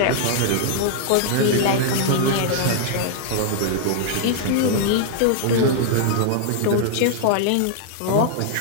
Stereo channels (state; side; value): different; both; correlation -0.01